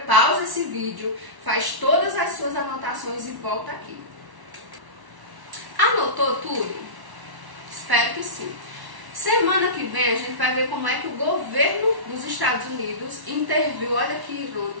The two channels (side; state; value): left; late; 1.1 ms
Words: esse vídeo, faz todas as suas anotações e volta aqui. Anotou tudo? Espero que sim. Semana que vem a gente vai ver como é que o governo dos Estados Unidos interviu, olha que